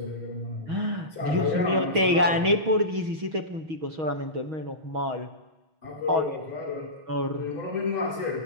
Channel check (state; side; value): late; left; 6.3 ms